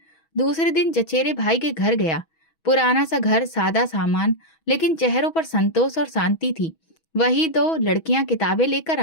दूसरे दिन चचेरे भाई के घर गया। पुराना सा घर, सादा सामान, लेकिन चेहरों पर संतोष और शांति थी। वही दो लड़कियां किताबें लेकर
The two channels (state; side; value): late; right; 6.2 ms